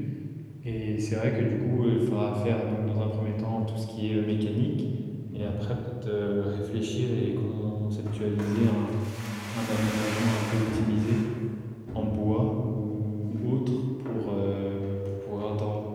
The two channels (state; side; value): identical; both; correlation 1.00